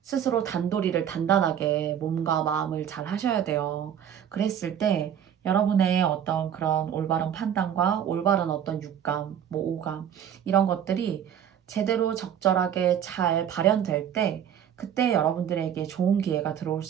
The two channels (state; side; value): quieter; left; 9.3 dB